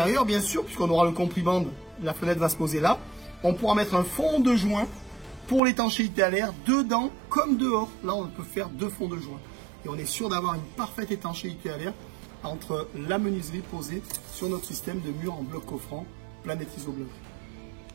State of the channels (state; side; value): drops out; left; at 5.6 s